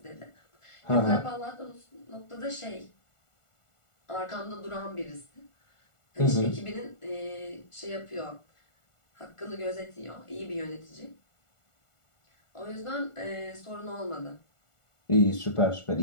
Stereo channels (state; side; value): late; right; 1.4 ms